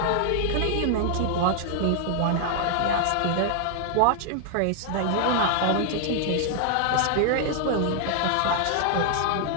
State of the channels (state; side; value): different; both; correlation 0.00